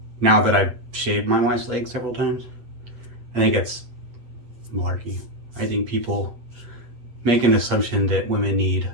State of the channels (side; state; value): left; late; 8.2 ms